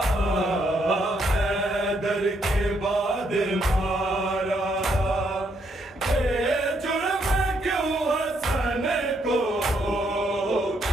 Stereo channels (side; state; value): both; normal; correlation 0.74